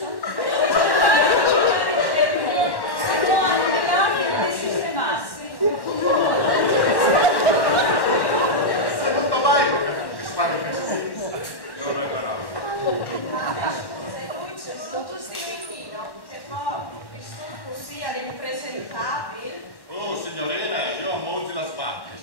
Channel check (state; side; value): late; right; 1.1 ms